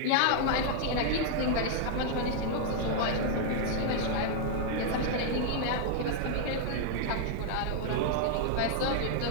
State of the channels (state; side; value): different; both; correlation -0.01